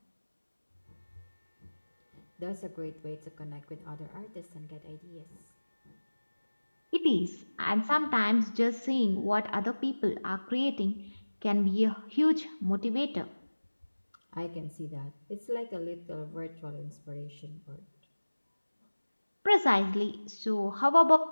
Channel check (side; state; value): both; inverted; correlation -1.00